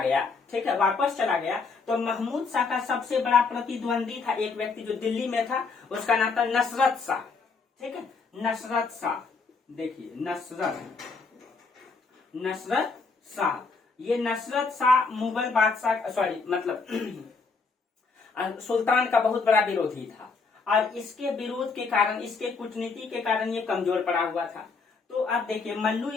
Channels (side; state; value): right; quieter; 4.6 dB